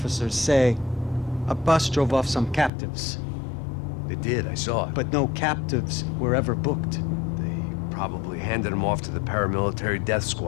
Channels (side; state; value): right; drops out; at 2.7 s